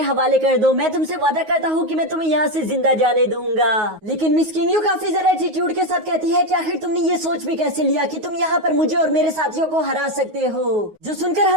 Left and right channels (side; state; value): left; late; 9.4 ms